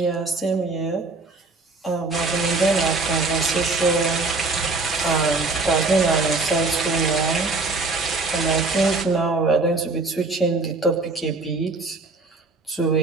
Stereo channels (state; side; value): quieter; left; 3.5 dB